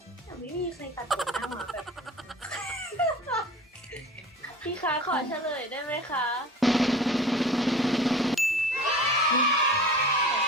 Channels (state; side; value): normal; both; correlation 0.39